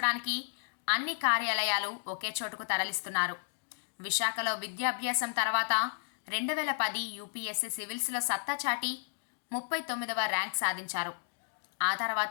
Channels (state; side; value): silent; right; digital silence